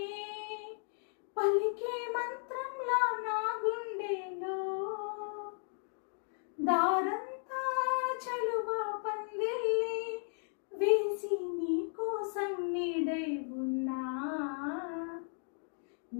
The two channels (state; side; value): silent; right; 54 dB below the other